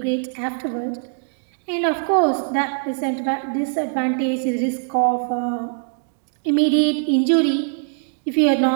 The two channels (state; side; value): silent; left; digital silence